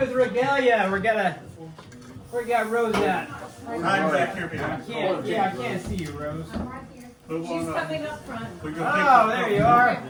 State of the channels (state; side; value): identical; both; correlation 1.00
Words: Regalia. We got Rose at. I can't see you, Rose. She's coming up front. Oh, there you are.